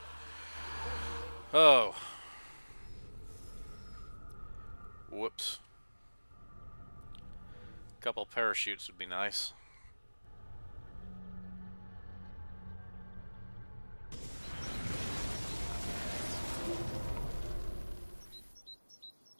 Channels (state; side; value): inverted; both; correlation -1.00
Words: Oh. Whoops. A couple parachutes would be nice.